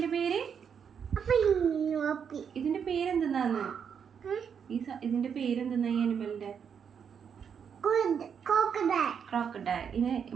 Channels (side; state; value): left; quieter; 7.3 dB